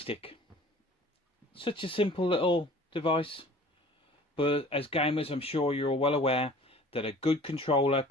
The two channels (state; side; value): normal; both; correlation 0.48